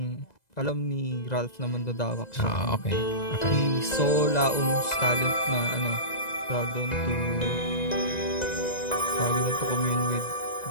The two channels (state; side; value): late; right; 2.0 ms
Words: Ralph na mandadawak siya. Okay. He saw Laum's talent na tawag doon to commune with